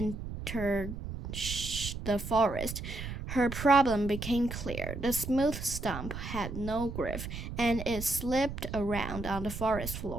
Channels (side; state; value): right; noise; rumble, 7 dB below the sound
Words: the forest, her problem became clear. The smooth stump had no grip, and it slipped around on the forest